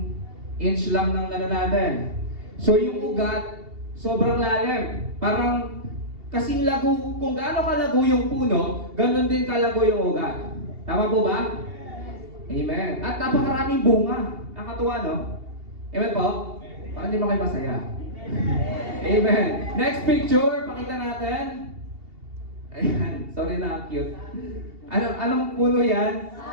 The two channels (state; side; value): late; left; 2.8 ms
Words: inch lang ng ano natin. So yung ugat, sobrang lalim. Parang kasing lago, kung gaano kalago yung puno, ganun din kalago yung ugat. Tama po ba? Amen. At napakaraming bunga. Nakatuwa, no? Amen po? Parang di ba kayo masaya? Amen. Next picture, pakita natin. Ayan, sorry na, cute. Anong puno yan?